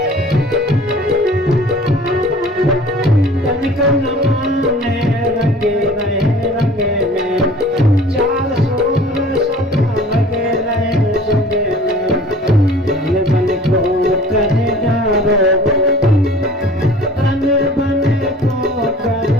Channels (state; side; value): normal; both; correlation 0.46